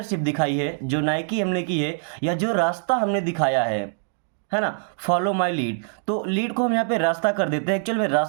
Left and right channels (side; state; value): left; silent; digital silence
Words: दिखाई है, जो नाइकी हमने की है, या जो रास्ता हमने दिखाया है ना। फॉलो माई लीड, तो लीड को हम यहाँ पे रास्ता कर देते हैं। एक्चुअल में